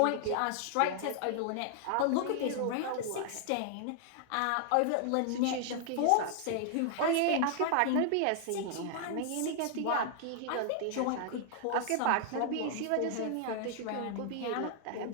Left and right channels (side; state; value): both; different; correlation 0.00